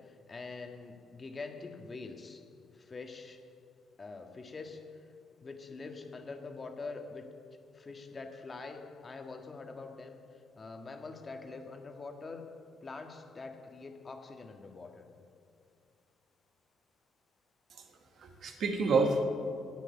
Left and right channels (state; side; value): normal; both; correlation 0.75